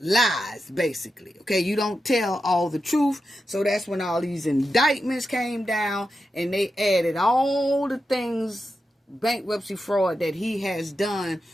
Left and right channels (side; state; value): both; normal; correlation 0.89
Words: basically. Okay, you don't tell all the truth. So that's when all these indictments came down and they added all the things, bankruptcy fraud that he has done